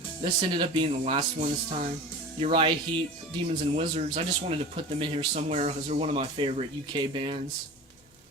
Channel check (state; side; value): normal; both; correlation 0.35